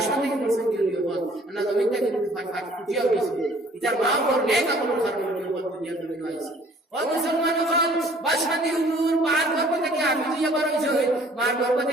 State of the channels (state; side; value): normal; both; correlation 0.56